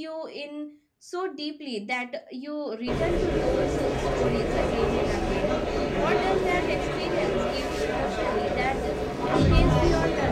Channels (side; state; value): both; identical; correlation 1.00